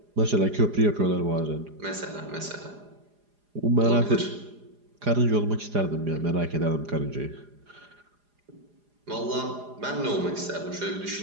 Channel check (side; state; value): left; late; 4.9 ms